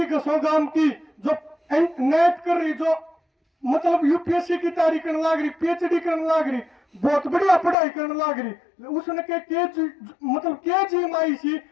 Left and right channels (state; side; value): drops out; right; at 7.8 s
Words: कसोगाम की जो नेट कर रही, जो मतलब यूपीएससी की तैयारी करने लग रही, पीएचडी करने लग रही, बहुत बढ़िया पढ़ाई करने लग रही, उसने मतलब के जी माई सी